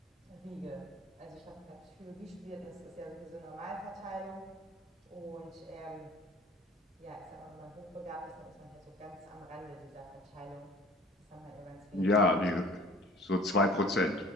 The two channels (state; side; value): normal; both; correlation 0.48